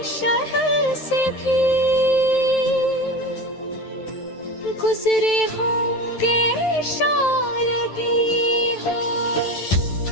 शहर से भी गुजरे होंगे, शायद ये हो।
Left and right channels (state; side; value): late; right; 11 ms